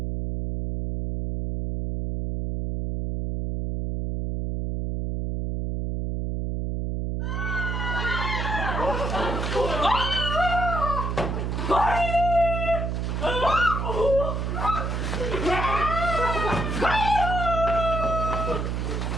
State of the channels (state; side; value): noise; right; hum, 1 dB below the sound